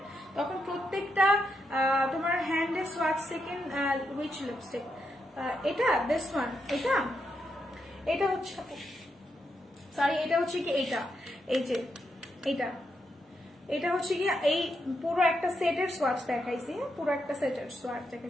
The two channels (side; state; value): both; normal; correlation 0.82